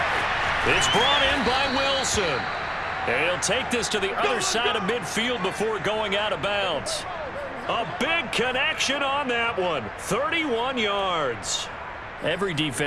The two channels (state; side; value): identical; both; correlation 1.00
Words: It's brought in by Wilson. And he'll take this to the other side of midfield before going out of bounds. A big connection on that one. 31 yards. Every